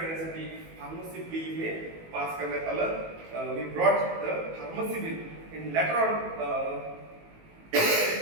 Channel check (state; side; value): late; left; 18 ms